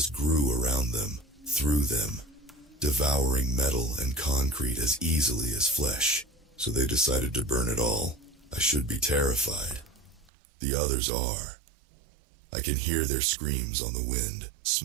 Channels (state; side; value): drops out; left; at 10.3 s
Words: grew around them, through them, devouring metal and concrete as easily as flesh. So they decided to burn it all. I should be terrified. The others are. I can hear their screams on the wind,